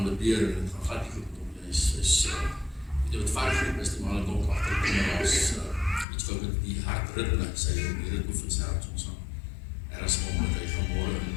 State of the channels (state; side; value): drops out; right; at 6.1 s